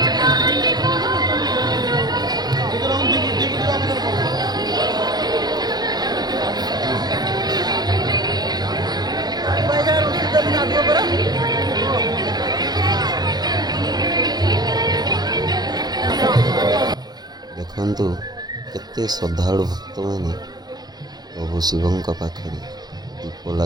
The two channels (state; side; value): late; left; 0.19 ms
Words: ଦେଖନ୍ତୁ କେତେ ଶ୍ରଦ୍ଧାଳୁ ଭକ୍ତମାନେ ପ୍ରଭୁ ଶିବଙ୍କ ପାଖରେ ଦୀପ